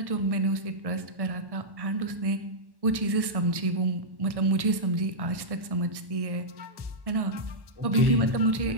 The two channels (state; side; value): late; left; 1.1 ms